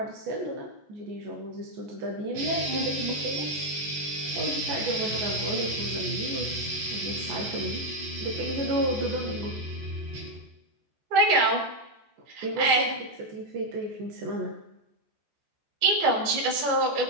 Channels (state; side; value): late; left; 14 ms